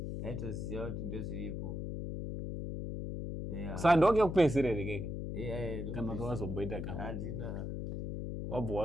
Yaitoziva kuti ndozviripo. Sandoke kupedzisira keke. Kana kawazomboita kama. Handina. Wabva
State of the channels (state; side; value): noise; left; hum, 4 dB below the sound